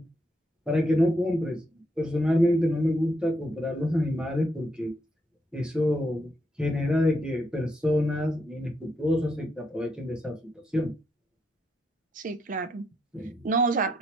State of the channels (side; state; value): both; normal; correlation 0.78